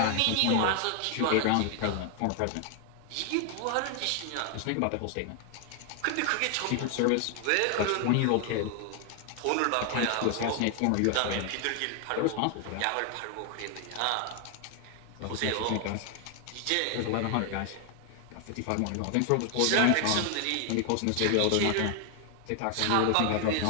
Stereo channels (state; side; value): different; both; correlation 0.00